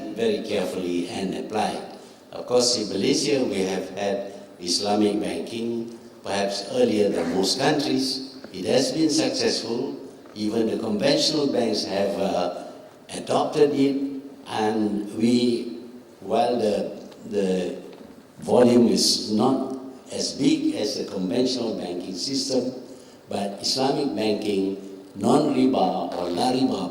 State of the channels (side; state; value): both; identical; correlation 1.00